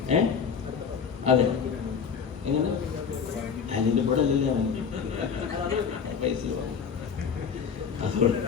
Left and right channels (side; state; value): right; quieter; 6.5 dB